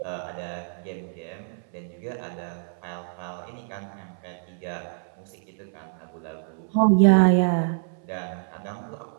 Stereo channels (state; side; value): silent; left; 60 dB below the other